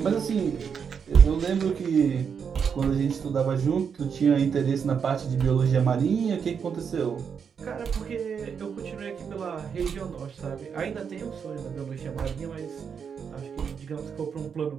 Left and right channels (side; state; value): left; quieter; 6.8 dB